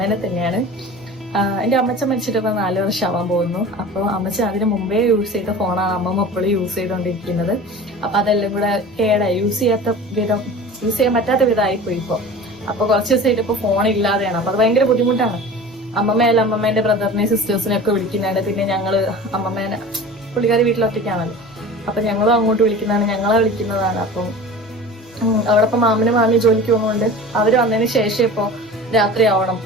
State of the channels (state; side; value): normal; both; correlation 0.37